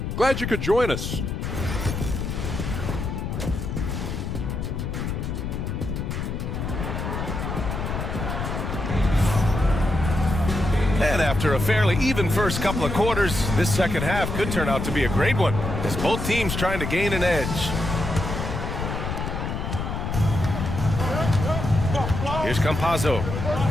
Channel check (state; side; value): noise; left; rumble, 3 dB below the sound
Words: Glad you could join us. And after a fairly even first couple of quarters, this second half could turn out to be a great one, as both teams trying to gain an edge. Here's Campazzo.